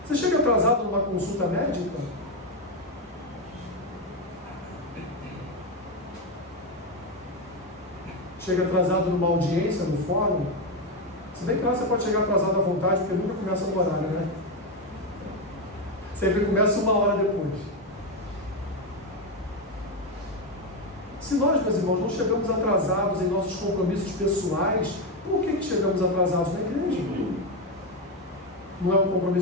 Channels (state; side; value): normal; both; correlation 0.09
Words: Você chega atrasado numa consulta médica? Chega atrasado numa audiência no fórum? Se bem que lá você pode chegar atrasado à vontade, porque nunca começa no horário, né? Sempre começa 1 hora depois. Se nós, meus irmãos, não chegamos atrasados em nossos compromissos pessoais, por que chegamos atrasados na igreja? Não é um